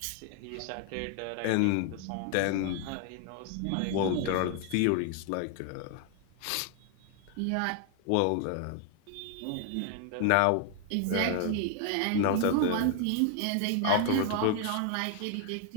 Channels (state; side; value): different; both; correlation 0.00